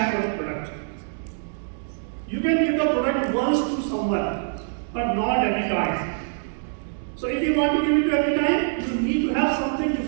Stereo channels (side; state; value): left; silent; digital silence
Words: for the product. You can give the product once to someone, but not every time. So if you want to give it to every time, you need to have something